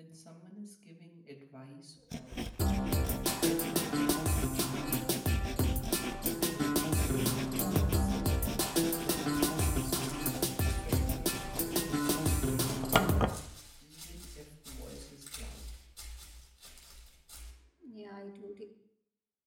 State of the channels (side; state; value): both; identical; correlation 1.00